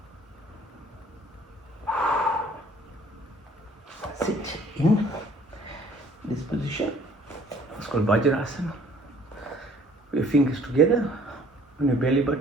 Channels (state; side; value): normal; both; correlation 0.56